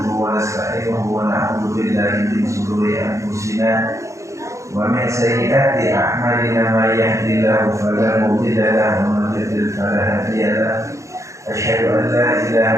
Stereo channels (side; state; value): left; late; 0.15 ms